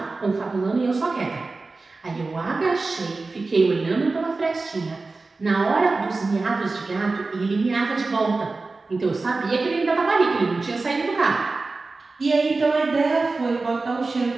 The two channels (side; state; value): left; quieter; 3.7 dB